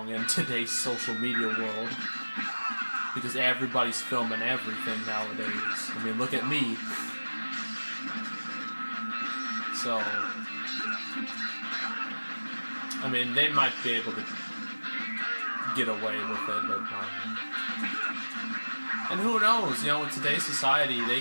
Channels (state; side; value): inverted; both; correlation -1.00